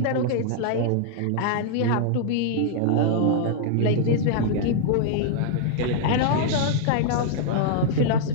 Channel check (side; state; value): both; different; correlation -0.01